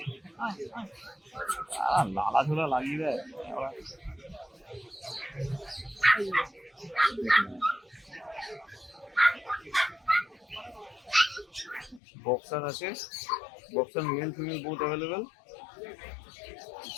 লালা ঝোলা লাগিয়ে দেয়। বক্সার আছে, boxer male female both available.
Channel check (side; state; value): right; drops out; at 12.0 s